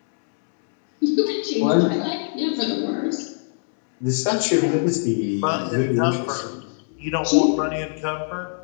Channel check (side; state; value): right; silent; digital silence